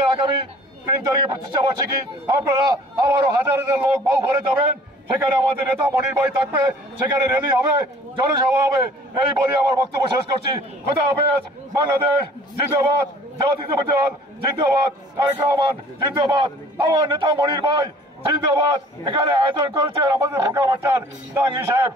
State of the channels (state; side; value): normal; both; correlation 0.51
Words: আগামী 3 তারিখে প্রতিষ্ঠা বার্ষিকী, আপনারা আবারও হাজার হাজার লোক বাউফলে যাবেন, সেখানে আমাদের নেতা মনির ভাই থাকবে, সেখানে র্যালি হবে, জনসভা হবে। এই বলে আমার বক্তব্য শেষ করছি। খোদা হাফেজ। বাংলাদেশ জিন্দাবাদ, জাতীয়তাবাদী দল জিন্দাবাদ, তারেক রহমান জিন্দাবাদ, আমার নেতা মনির ভাই জিন্দাবাদ। এখানে আয়োজন করেছেন আমাদের ফোরকান মাস্টার, জাহাঙ্গীর সাহেব,